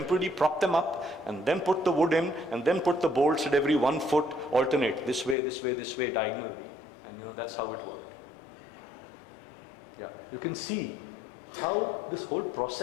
prop them up, and then put the wood in, and then put the bolts at every 1 foot, alternate, this way, this way, this way, diagonally. And that's how it worked. Yeah, you can see how this whole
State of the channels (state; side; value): drops out; right; at 5.4 s